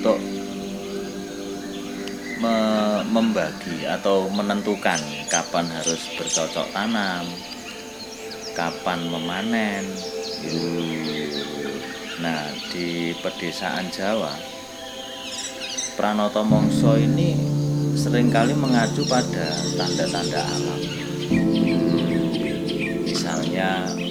membagi atau menentukan kapan harus bercocok tanam, kapan memanen. Nah, di pedesaan Jawa, Pranoto Mangsa ini seringkali mengacu pada tanda-tanda alam. Misalnya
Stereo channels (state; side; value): identical; both; correlation 1.00